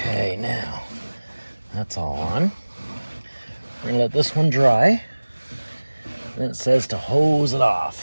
now, that's all on. We're going to let this one dry. Then it says to hose it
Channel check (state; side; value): inverted; both; correlation -1.00